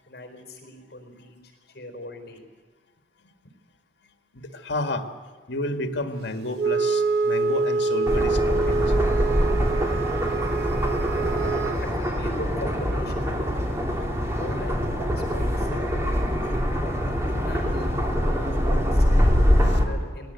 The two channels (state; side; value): normal; both; correlation 0.77